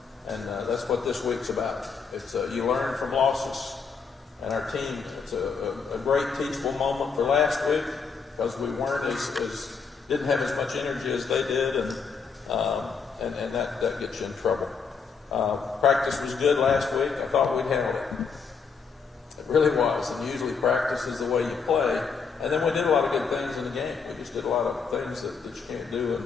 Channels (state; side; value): quieter; right; 5.6 dB